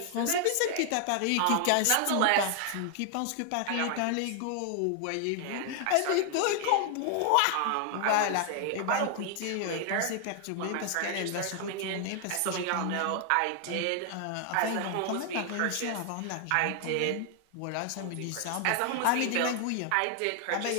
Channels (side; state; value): both; different; correlation 0.00